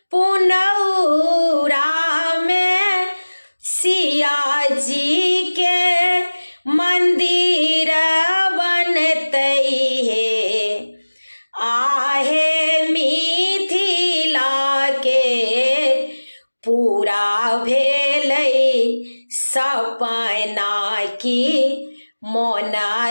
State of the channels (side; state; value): both; inverted; correlation -1.00